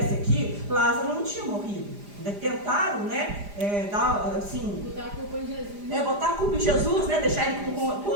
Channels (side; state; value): left; late; 4.9 ms